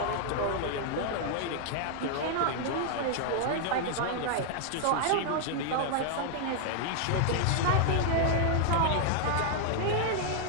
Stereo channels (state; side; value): different; both; correlation 0.00